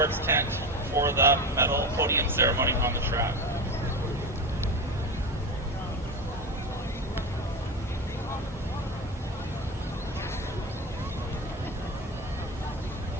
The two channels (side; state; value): both; normal; correlation 0.22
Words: tent for the medal podium ceremony on the track.